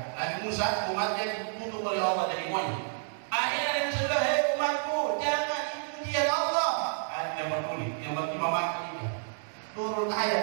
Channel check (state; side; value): silent; left; digital silence